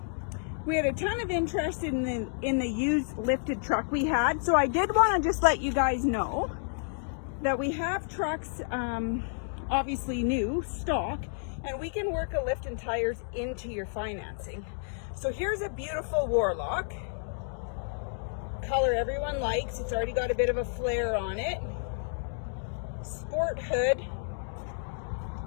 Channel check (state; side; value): silent; right; digital silence